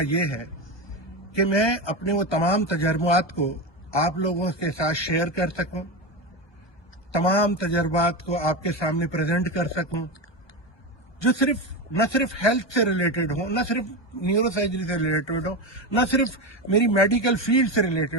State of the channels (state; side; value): late; right; 1.2 ms